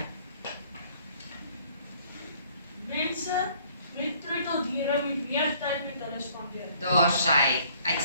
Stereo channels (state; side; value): inverted; both; correlation -0.59